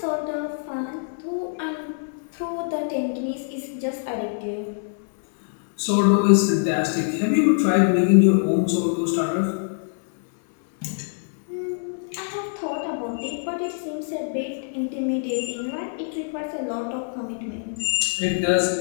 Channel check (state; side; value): silent; right; 62 dB below the other